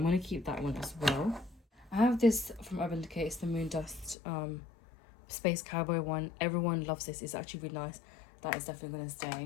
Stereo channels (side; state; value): right; drops out; at 4.2 s